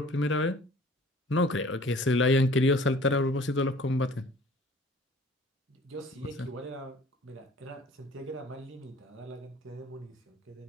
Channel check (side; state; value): both; normal; correlation 0.50